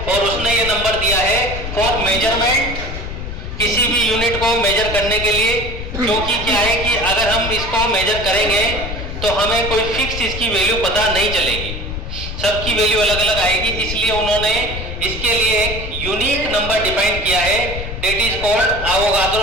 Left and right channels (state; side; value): noise; left; rumble, 7 dB below the sound